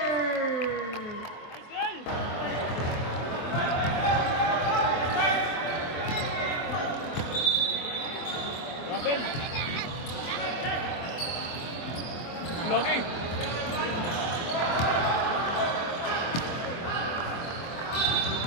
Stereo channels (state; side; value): late; right; 24 ms